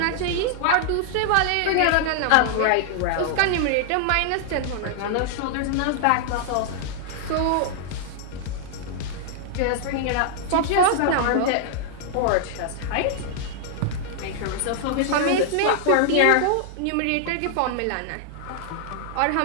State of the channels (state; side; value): different; both; correlation -0.01